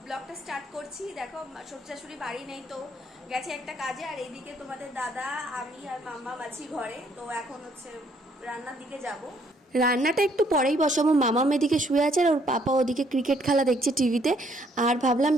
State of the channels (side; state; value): both; normal; correlation 0.66